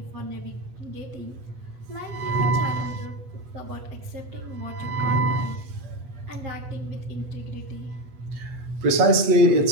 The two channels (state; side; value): late; left; 8.0 ms